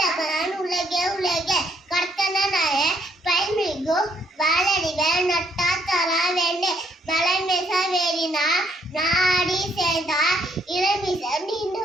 உலகே கர்த்தனாய பைமிகு வாழடிவ நட்டா தரா வேண்டு மலைமேச வேறினா நாடி சேர்ந்தா இளமிச நின்று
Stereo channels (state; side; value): normal; both; correlation 0.69